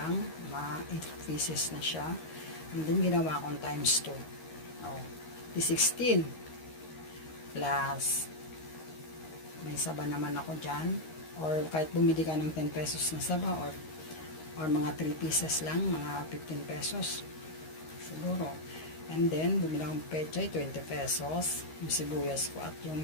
8 pieces na siya. And then, ginawa kong times 2. Oh, di 16. Plus, may saba naman ako dyan. Or kahit bumili ka ng 10 pesos na saba or mga 3 pieces lang, mga 15 pesos siguro. And then bumili akong pechay, 20 pesos yung sibuyas ko, at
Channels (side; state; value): right; late; 13 ms